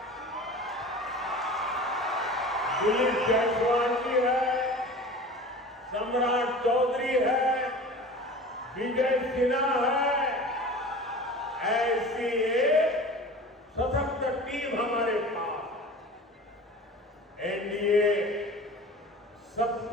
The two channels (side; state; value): both; normal; correlation 0.38